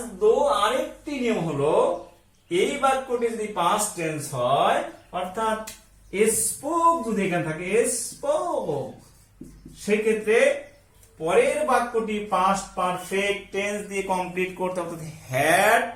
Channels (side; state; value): both; identical; correlation 1.00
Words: দো আরেকটি নিয়ম হলো, এই বাক্যটি যদি পাস্ট টেন্স হয়, অর্থাৎ স্পোক যদি এখানে থাকে, স্পোক, সেক্ষেত্রে পরের বাক্যটি পাস্ট পারফেক্ট টেন্স দিয়ে কমপ্লিট করতে হবে, অর্থাৎ হ্যাড